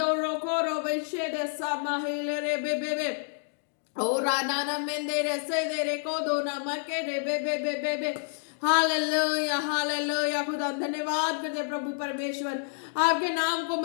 कोरो बेशेदे समाहिले रे बेबे बे। Ora nana mendere sedere kodona makere bebe bebe bebe hallelujah hallelujah. खुदा धन्यवाद करते प्रभु परमेश्वर, आपके नाम को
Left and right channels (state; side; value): silent; right; digital silence